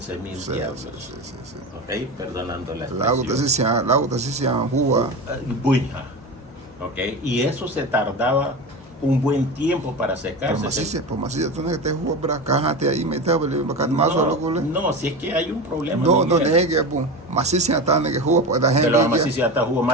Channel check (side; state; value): both; normal; correlation 0.25